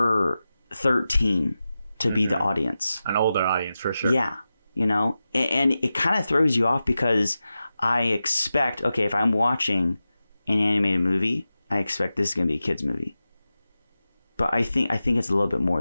13 to be the audience. An older audience, for sure. Yeah, you know, and it kind of throws you off because I expect, okay, if I'm watching an animated movie, I expect this is going to be a kid's movie. But I think it's a little bit more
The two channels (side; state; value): both; inverted; correlation -0.93